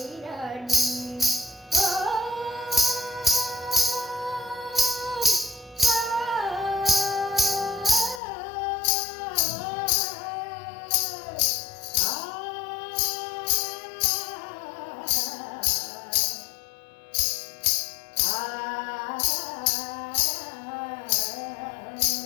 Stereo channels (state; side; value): drops out; right; at 8.2 s